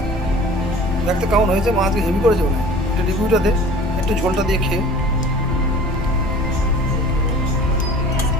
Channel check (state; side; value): noise; left; rumble, 7 dB below the sound